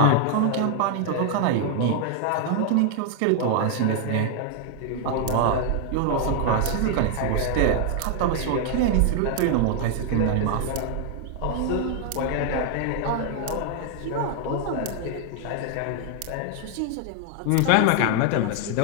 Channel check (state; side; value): different; both; correlation 0.00